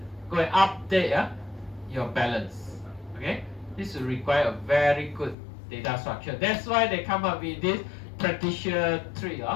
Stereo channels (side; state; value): right; drops out; at 5.4 s